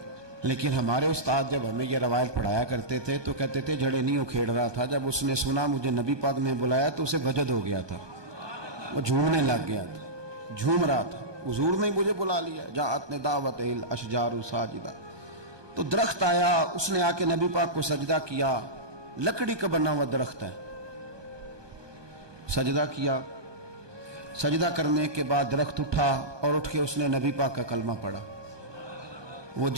لیکن ہمارے استاد جب ہمیں یہ روایت پڑھایا کرتے تھے تو کہتے تھے جڑیں نہیں اکھیڑ رہا تھا، جب اس نے سنا مجھے نبی پاک نے بلایا تو اسے وجد ہو گیا تھا، وہ جھومنے لگ گیا تھا، جھوم رہا تھا، حضور نے مجھے بلا لیا، جاءت لدعوتہ الاشجار ساجدۃ۔ تو درخت آیا، اس نے آ کے نبی پاک کو سجدہ کیا، لکڑی کا بنا ہوا درخت ہے، سجدہ کیا۔ سجدہ کرنے کے بعد درخت اٹھا اور اٹھ کے اس نے نبی پاک کا کلمہ پڑھا۔ وہ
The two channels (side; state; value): left; late; 1.2 ms